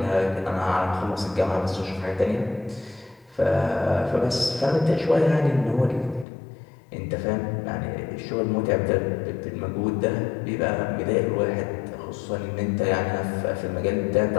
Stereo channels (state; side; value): drops out; right; at 6.2 s